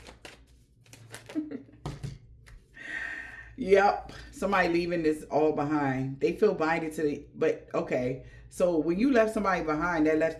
Yep. Somebody leaving this all behind. They feel binded to the, but okay. So when you left somebody behind, that left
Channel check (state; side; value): identical; both; correlation 1.00